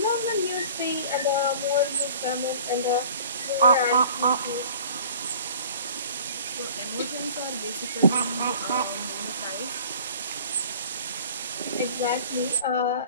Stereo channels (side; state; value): both; inverted; correlation -0.46